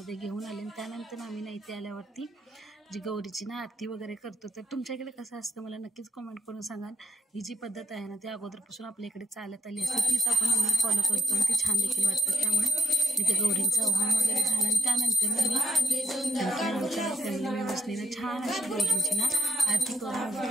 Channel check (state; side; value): normal; both; correlation 0.73